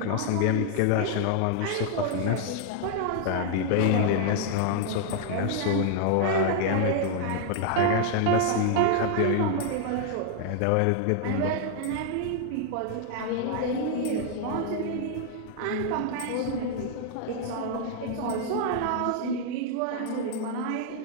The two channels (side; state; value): both; different; correlation 0.00